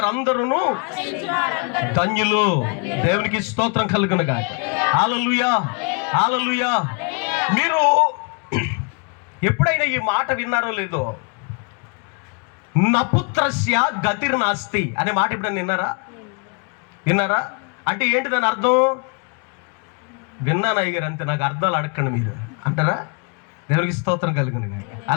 ధన్యులు. దేవునికి స్తోత్రం కలుగునుగా. హల్లెలూయా, హల్లెలూయా. మీరు ఎప్పుడైనా ఈ మాట విన్నారో లేదో, నపుత్రస్య గతిర్నాస్తి అనే మాట ఎప్పుడైనా విన్నారా? అంటే ఏంటి దాని అర్థం? విన్నాను అయ్యగారు, అంతే, నాకు అర్థాలు అడగండి మీరు అంటారా? దేవునికి స్తోత్రం కలుగునుగా.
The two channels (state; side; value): quieter; right; 37.2 dB